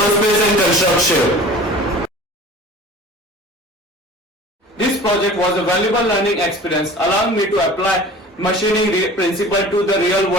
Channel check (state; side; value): normal; both; correlation 0.42